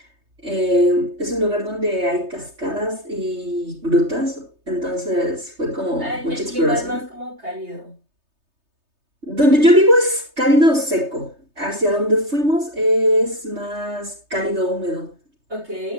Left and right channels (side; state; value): left; late; 3.3 ms